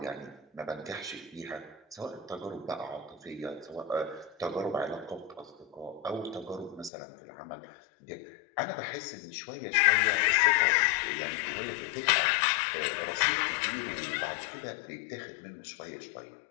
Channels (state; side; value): drops out; right; at 6.9 s